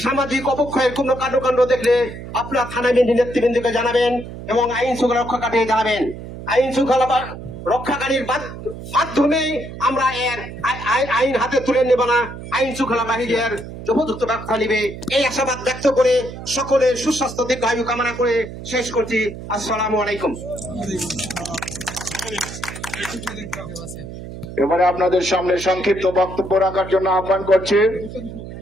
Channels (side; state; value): right; noise; hum, 11 dB below the sound